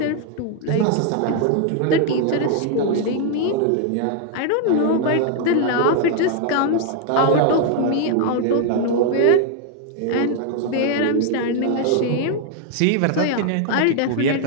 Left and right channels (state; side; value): different; both; correlation 0.00